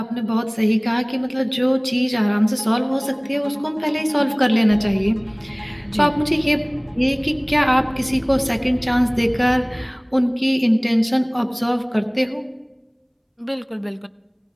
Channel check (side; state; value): both; identical; correlation 1.00